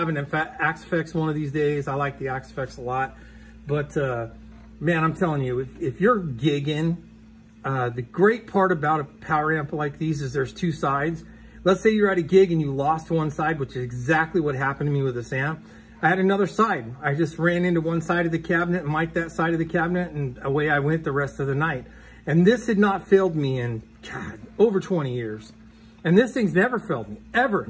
an Axe FX one of these days. I like the Axe FX a lot. But man, I'm telling you, if you're gigging, the great part about a power amp like these is there's two sides. Let's say you're at a gig and you lost one side, which is exactly what happened to me with this amp. I had another side. I just ran into one side of the cabinet and mic'd that side of the cabinet, and away I went the rest of the night. And this had not failed me in, God, over 20 years. And this thing's never failed me, ever.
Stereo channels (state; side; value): identical; both; correlation 1.00